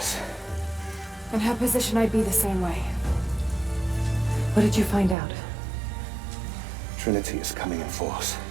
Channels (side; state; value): left; drops out; at 5.2 s